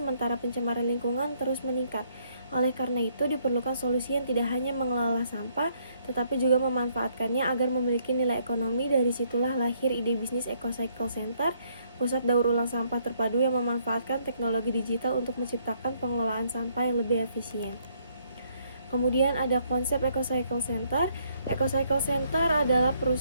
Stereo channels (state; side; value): inverted; both; correlation -0.68